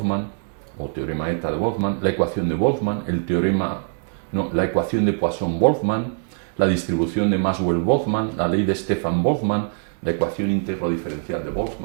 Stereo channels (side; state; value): left; silent; digital silence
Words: o teorema eta de Boltzmann, la ecuación de Boltzmann, la ecuación de Poisson-Boltzmann, la distribución de Maxwell-Boltzmann, la ley de Stefan Boltzmann, la ecuación íntegro diferencial de